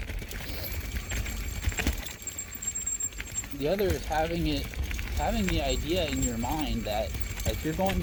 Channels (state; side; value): identical; both; correlation 1.00